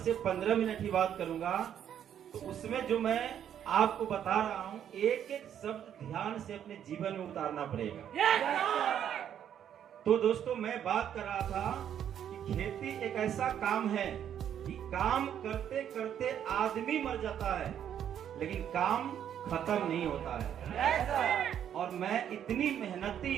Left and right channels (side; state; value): left; quieter; 9.6 dB